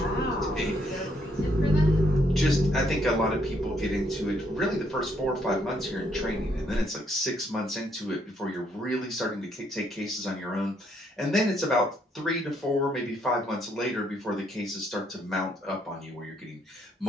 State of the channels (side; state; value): both; normal; correlation 0.71